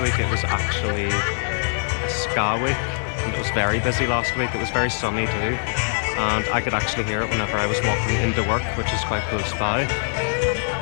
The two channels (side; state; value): right; silent; 64 dB below the other